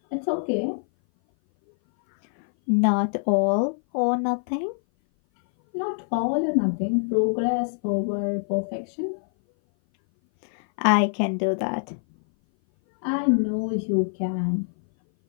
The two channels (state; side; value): silent; right; 58 dB below the other